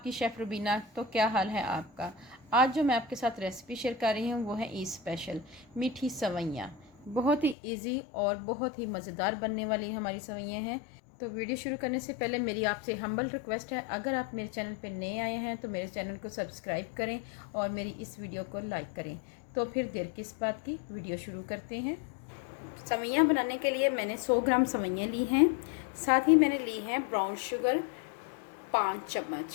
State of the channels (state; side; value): drops out; right; at 7.6 s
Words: शेफ़ रुबीना। तो क्या हाल है आपका? आज जो मैं आपके साथ रेसिपी शेयर कर रही हूँ वो है ईद स्पेशल मीठी सवैयाँ। बहुत ही इजी और बहुत ही मज़ेदार बनने वाली हमारी सवैयाँ हैं। तो वीडियो शुरू करने से पहले मेरी आपसे हम्बल रिक्वेस्ट है, अगर आप मेरे चैनल पर नए आए हैं तो मेरे चैनल को सब्सक्राइब करें और मेरी इस वीडियो को लाइक करें। तो फिर देर किस बात की, वीडियो शुरू करते हैं। सवैयाँ बनाने के लिए मैंने 100 ग्राम सवैयाँ ली हैं। साथ ही मैंने ली है ब्राउन शुगर 5